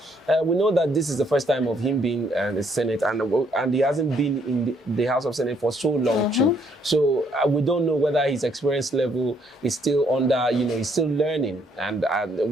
We know that this is the first time of him being in the Senate, and he hasn't been in the House of Senate for so long too. So we don't know whether his experience level is still under, he's still learning. And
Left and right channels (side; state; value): both; normal; correlation 0.69